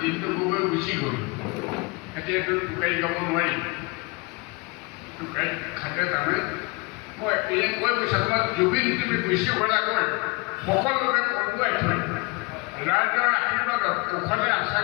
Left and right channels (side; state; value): right; quieter; 27.2 dB